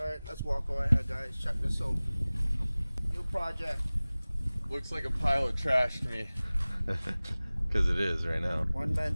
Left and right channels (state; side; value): inverted; both; correlation -0.99